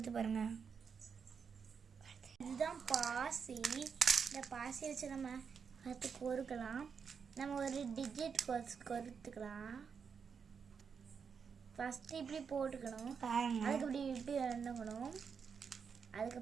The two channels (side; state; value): left; quieter; 6.3 dB